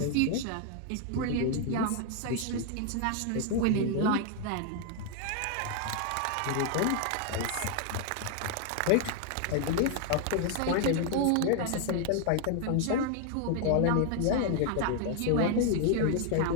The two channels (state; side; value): different; both; correlation 0.00